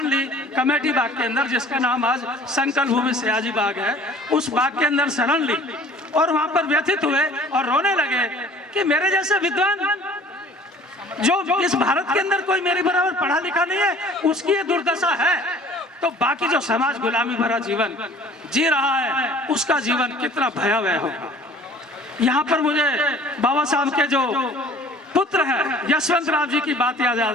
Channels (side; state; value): both; normal; correlation 0.49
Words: ली कमेटी बाग के अंदर, जिसका नाम आज संकल्प भूमि सयाजी बाग है। उस बाग के अंदर शरण ली और वहां पर व्यथित हुए और रोने लगे कि मेरे जैसे विद्वान जो इस भारत के अंदर कोई मेरे बराबर पढ़ा लिखा नहीं है, उसकी ये दुर्दशा है, तो बाकी जो समाज गुलामी भरा जीवन जी रहा है उसका जीवन कितना भयावह होगा। यहाँ पर मुझे बाबा साहब के जो पुत्र हैं यशवंत राव जी की बात